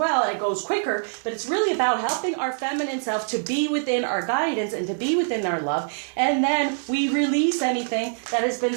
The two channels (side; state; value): left; silent; digital silence